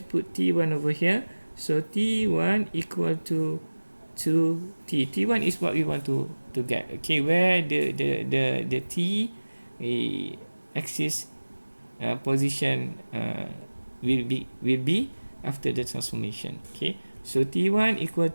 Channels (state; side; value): inverted; both; correlation -1.00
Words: put t1 over here. So t1 equal to 2t. T1 is what we want to get. Okay, where the t axis position will be after the transformation. Okay, so t1 equal